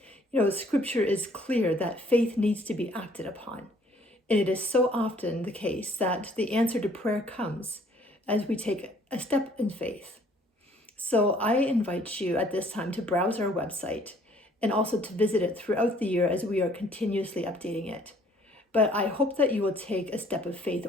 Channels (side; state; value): both; normal; correlation 0.60